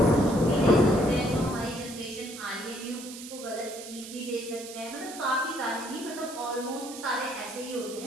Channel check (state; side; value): noise; right; hiss, 13 dB below the sound